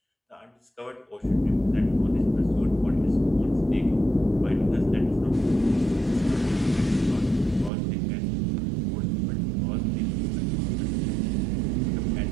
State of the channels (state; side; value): drops out; left; at 7.7 s